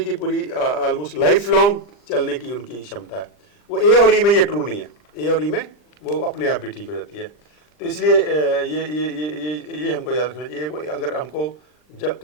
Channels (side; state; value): right; late; 40 ms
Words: की पूरी ऑलमोस्ट लाइफ लॉन्ग चलने की उनकी क्षमता है। वो ए और ई में ये ट्रू नहीं है। ए और ई में वो अपने आप भी ठीक हो जाती है। तो इसलिए ये हमको याद रखना चाहिए। कोई अगर हमको